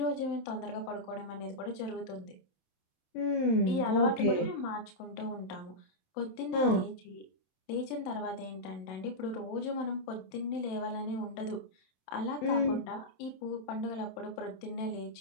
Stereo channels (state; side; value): late; right; 27 ms